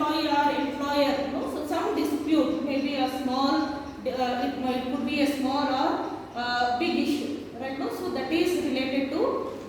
or employer, so some dispute, maybe a small, it could be a small or big issue, right now. So that is related to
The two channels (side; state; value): both; identical; correlation 1.00